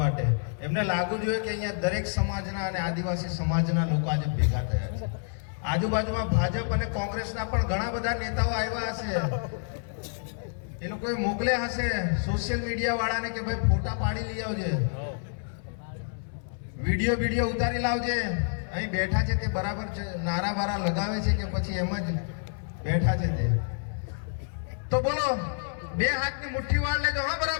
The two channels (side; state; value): right; silent; 59 dB below the other